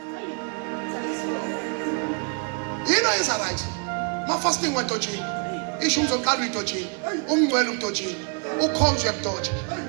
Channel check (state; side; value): quieter; left; 38.4 dB